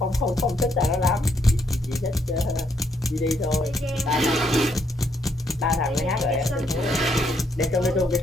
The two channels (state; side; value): normal; both; correlation 0.73